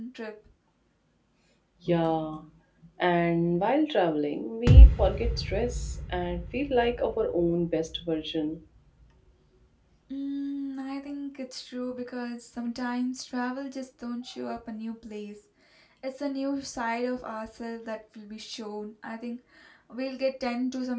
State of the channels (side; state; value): both; identical; correlation 1.00